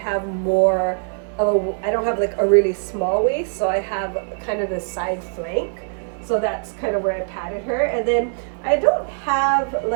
more of I don't have like a really small waist, so I have kind of the side flank. So that's kind of where I patted her. And then I don't have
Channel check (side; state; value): left; silent; digital silence